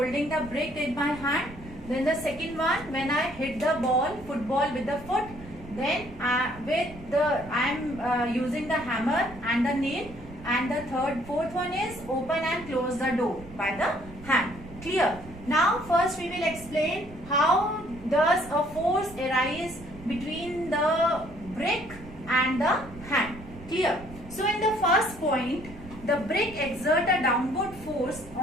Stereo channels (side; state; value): right; noise; rumble, 17 dB below the sound